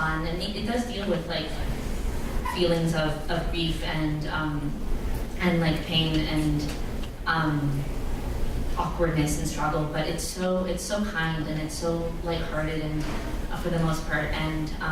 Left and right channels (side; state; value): both; identical; correlation 1.00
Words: and it does deal with like feelings of grief and like pain and awkwardness and struggle, but it's so kind and it's so lighthearted and for the most part, and